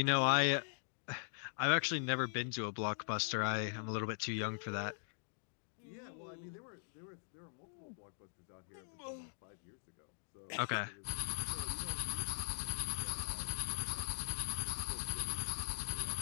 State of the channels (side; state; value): right; silent; digital silence